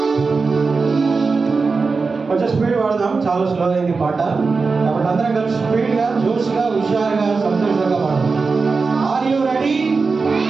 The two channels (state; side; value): quieter; left; 4.4 dB